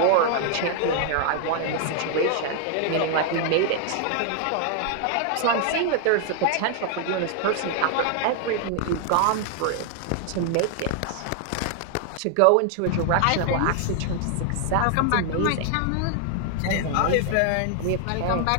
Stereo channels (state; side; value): different; both; correlation 0.00